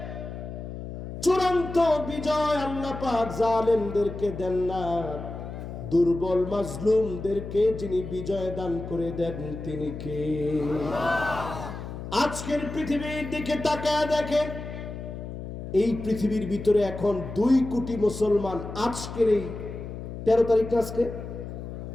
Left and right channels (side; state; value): left; noise; hum, 9 dB below the sound